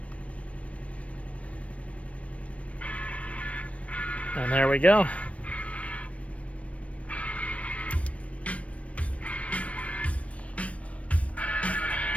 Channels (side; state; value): right; late; 0.064 ms